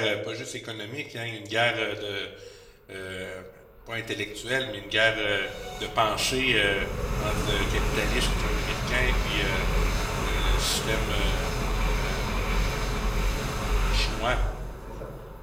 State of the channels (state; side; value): identical; both; correlation 1.00